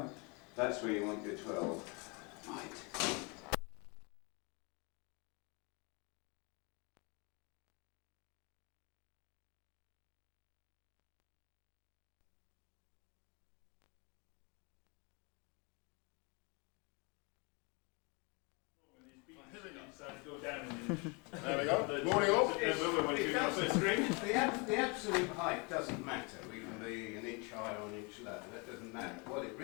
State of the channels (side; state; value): right; quieter; 31.0 dB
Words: That's where you want your 12. Right. There we go. Morning all. The absolute height doesn't matter. We can be an inch higher or an inch lower. That doesn't matter. What it